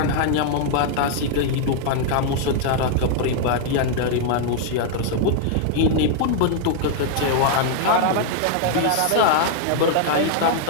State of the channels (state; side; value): different; both; correlation 0.00